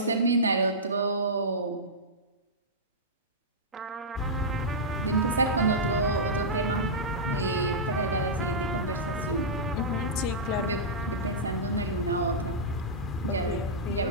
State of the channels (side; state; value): both; normal; correlation -0.13